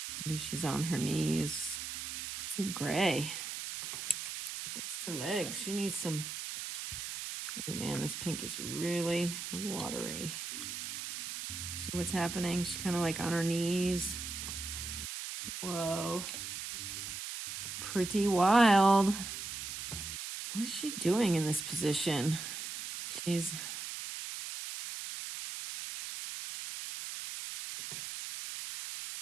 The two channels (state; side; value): noise; right; hiss, 6 dB below the sound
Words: Maybe she's on her knees. Too gray. That's her legs. She needs some... Oh, man, this pink is really watery. See what's happening? She's kind of like on her knees. Whoa. Pretty wild. What is she doing in this position? She's...